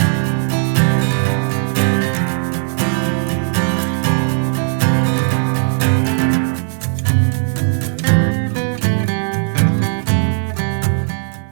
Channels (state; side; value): silent; left; 60 dB below the other